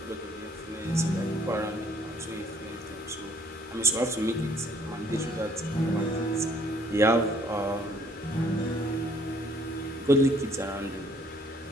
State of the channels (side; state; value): both; normal; correlation 0.62